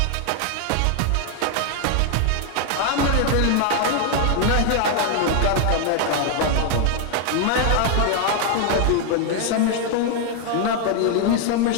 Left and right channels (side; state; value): both; different; correlation 0.00